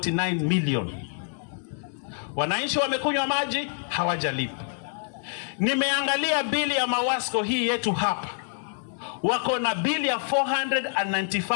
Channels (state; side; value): silent; right; 61 dB below the other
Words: million. Wananchi wamekunywa maji, hawajalipa. Nimeangalia bili ya Mawasco hii yetu hapa, wako na bili ya